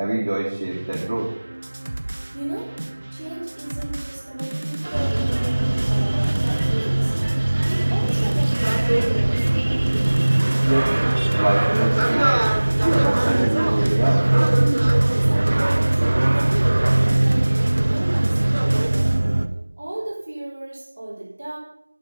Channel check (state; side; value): inverted; both; correlation -1.00